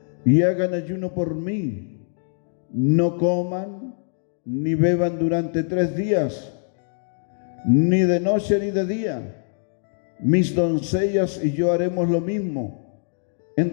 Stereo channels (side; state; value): right; silent; digital silence